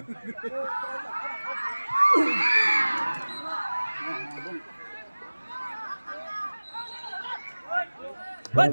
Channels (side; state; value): both; inverted; correlation -1.00